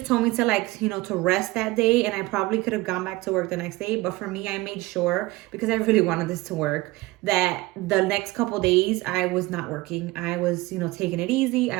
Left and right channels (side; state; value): left; quieter; 20.6 dB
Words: told me to like, you know, to rest that day, and I probably could have gone back to work the next day. But for me, I made sure, because I really wanted this to work, that the next couple days I was not working. I was, you know, taking it easy.